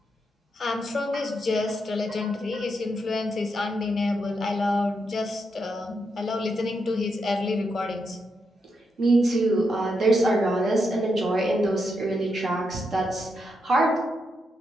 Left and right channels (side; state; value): both; normal; correlation 0.82